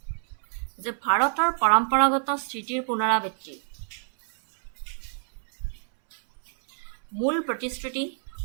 যে ভাৰতৰ পৰম্পৰাগত স্থিতিৰ পুনৰাবৃত্তি মূল প্ৰতিশ্ৰুতি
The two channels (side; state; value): left; silent; 60 dB below the other